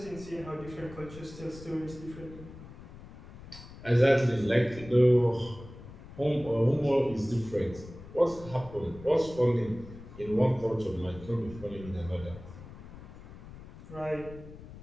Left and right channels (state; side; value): noise; left; rumble, 16 dB below the sound